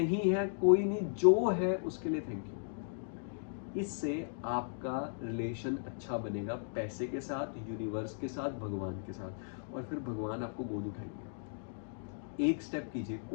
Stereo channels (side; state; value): right; silent; digital silence